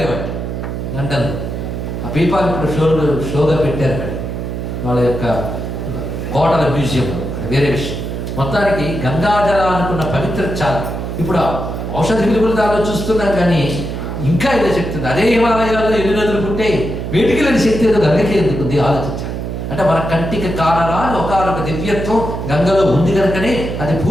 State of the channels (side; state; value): right; noise; hum, 5 dB below the sound